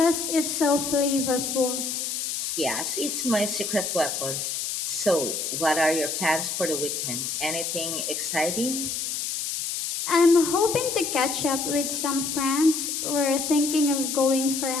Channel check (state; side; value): noise; left; hiss, 3 dB below the sound